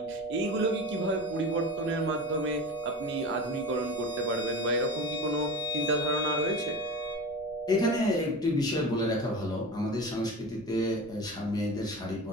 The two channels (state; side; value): noise; left; rumble, 24 dB below the sound